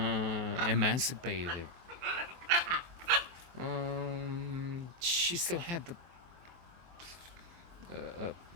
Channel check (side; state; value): left; late; 23 ms